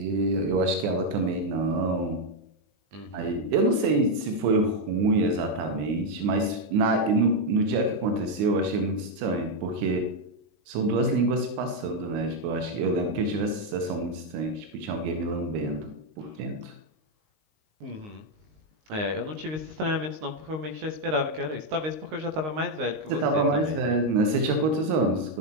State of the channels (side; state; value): left; late; 19 ms